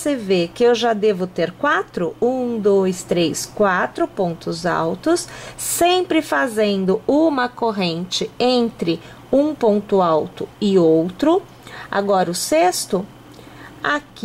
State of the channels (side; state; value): both; identical; correlation 1.00